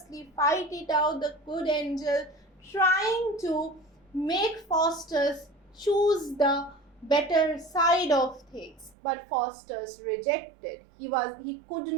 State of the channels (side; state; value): left; drops out; at 9.0 s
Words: fight it out. The good angel trying to make Faustus choose the better side of things, but Faustus rejected. He could